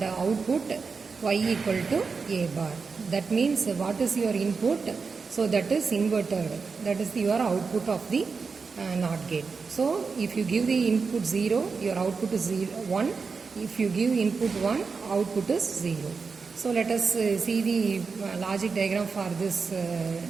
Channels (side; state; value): left; quieter; 4.9 dB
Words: output y equal to a bar. That means what is your input? So that is inverted. That is your output of the NOT gate. So if you give the input 0, your output is 1. If you give input 1, output is 0. So let us see the logic diagram for this